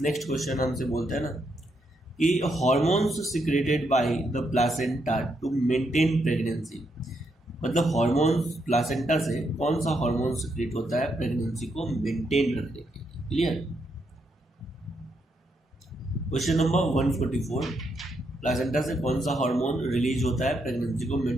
नेक्स्ट क्वेश्चन हमसे बोलते हैं ना कि hormones secreted by the placenta to maintain pregnancy, मतलब हॉर्मोन्स प्लासेंटा से कौन सा हार्मोन सिक्रेट होता है प्रेगनेंसी को मेंटेन रखने के लिए? क्लियर। क्वेश्चन नंबर 144, प्लासेंटा से कौन सा हार्मोन रिलीज होता है प्रेगनेंसी को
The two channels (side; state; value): both; normal; correlation 0.79